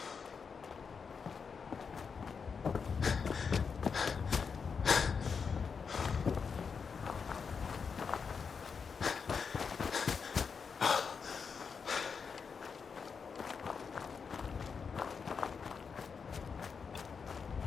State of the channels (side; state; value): right; quieter; 5.8 dB